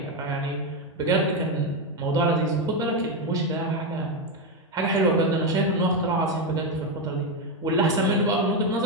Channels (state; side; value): normal; both; correlation 0.08